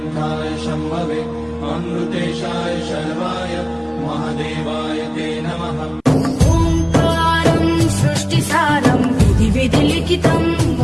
शम्भवे अमृतेशाय शर्वाय महादेवाय ते नमः। ओंकारं सृष्टिसारं विधिलिखितं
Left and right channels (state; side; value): identical; both; correlation 1.00